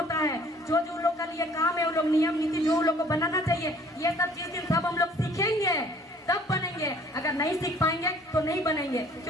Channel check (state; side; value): normal; both; correlation 0.55